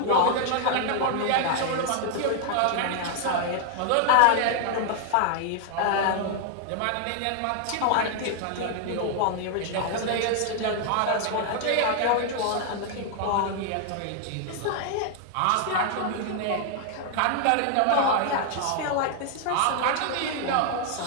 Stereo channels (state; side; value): different; both; correlation 0.00